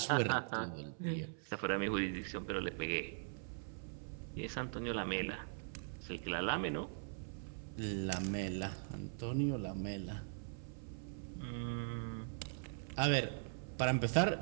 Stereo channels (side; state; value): left; silent; 50 dB below the other